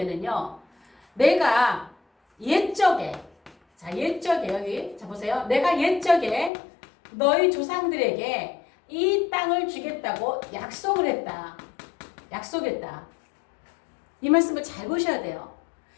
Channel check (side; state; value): right; drops out; at 6.5 s